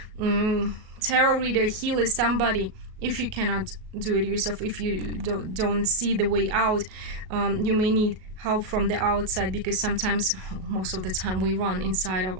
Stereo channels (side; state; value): left; late; 38 ms